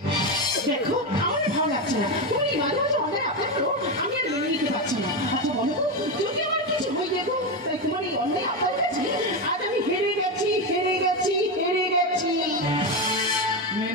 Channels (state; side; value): normal; both; correlation 0.12